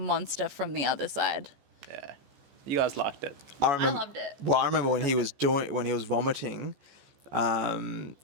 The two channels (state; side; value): late; left; 14 ms